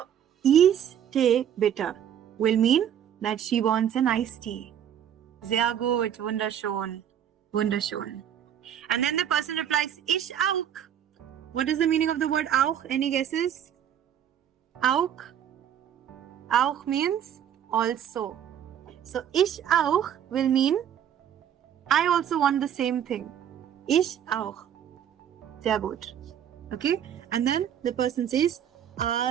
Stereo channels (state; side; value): quieter; left; 9.5 dB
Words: Eistee bitte will mean that she wants an iced tea. Sehr gut, wunderschön, wunderschön. And then the person replies, Ich auch. What is the meaning of the word auch? Any guesses? Auch. Auch means also. So ich auch will mean I also want the same thing. Ich auch. Sehr gut. Okay? And then the person says,